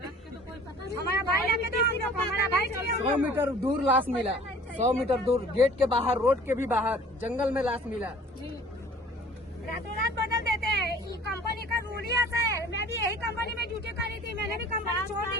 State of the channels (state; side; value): normal; both; correlation 0.49